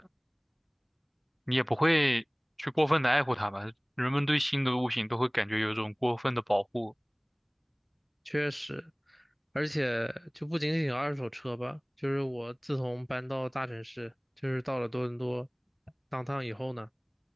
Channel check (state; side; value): identical; both; correlation 1.00